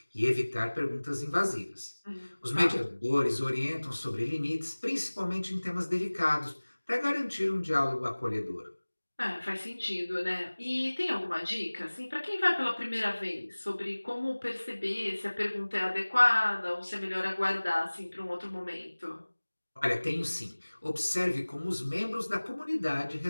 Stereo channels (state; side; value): inverted; both; correlation -1.00